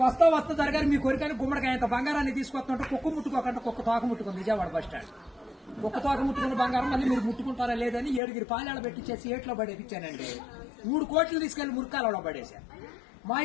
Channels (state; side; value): drops out; right; at 8.2 s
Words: వస్తా జరగాలి మీ కోరికని గుమ్మడికాయ అంత బంగారాన్ని తీసుకొస్తుంటే కుక్క ముట్టుకోకుండా కుక్క తోక ముట్టుకుంది విజయవాడ బస్ స్టాండ్. కుక్క తోక ముట్టుకున్న బంగారం మళ్ళీ మీరు ముట్టుకుంటారా లేదని 7 పాలేళ్ళ పెట్టించేసి ఏట్లో పడేపించానండి. 3 కోట్లు తీసుకెళ్లి మురికాలలో పడేశాను. మా